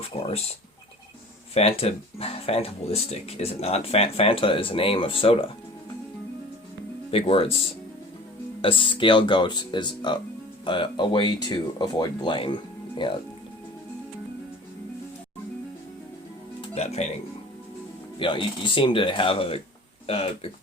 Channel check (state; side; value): normal; both; correlation 0.44